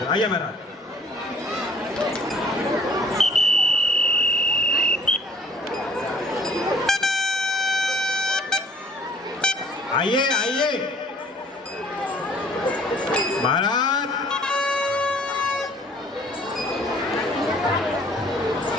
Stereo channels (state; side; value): normal; both; correlation 0.56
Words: आइए महाराज। आइए आइए महाराज।